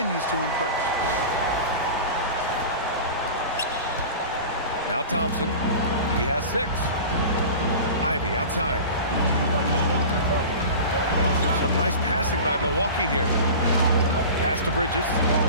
to impress. Now Thompson, he has 6. Ivy outside. Some nice passing by Milwaukee here. Pass to Bridges.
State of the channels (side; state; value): both; inverted; correlation -0.34